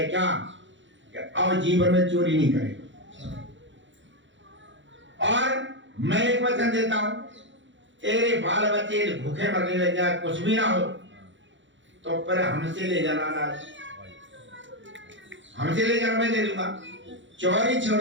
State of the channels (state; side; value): late; left; 0.54 ms